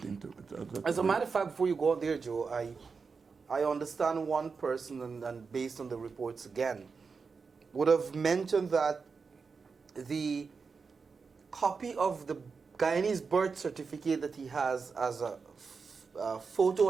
to. As a matter of fact, before you go on there, Joe, I understand one person, and based on the reports again, would have mentioned that the copy of the Guyanese birth certificate that he has as a photo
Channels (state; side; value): quieter; left; 5.0 dB